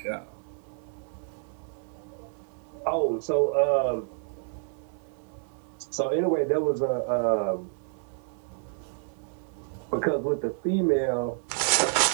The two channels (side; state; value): left; silent; 59 dB below the other